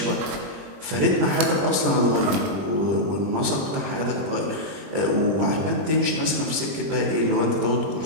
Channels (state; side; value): late; left; 20 ms